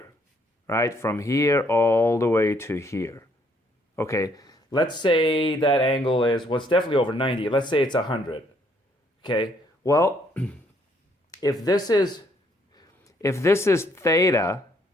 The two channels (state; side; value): normal; both; correlation 0.68